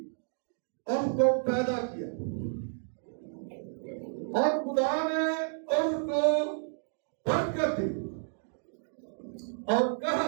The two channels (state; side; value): silent; left; digital silence